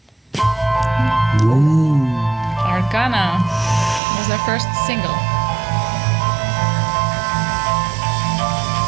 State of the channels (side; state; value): left; drops out; at 4.0 s